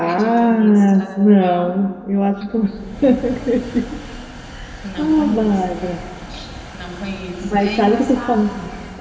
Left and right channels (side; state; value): both; identical; correlation 1.00